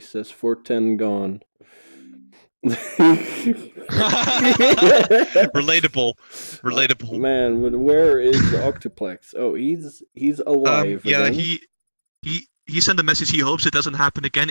410 gone. Relatable. Man, but where is Octuplex? Oh, he's alive Yeah, again. he sent a message. He hopes it doesn't happen again.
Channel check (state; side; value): inverted; both; correlation -1.00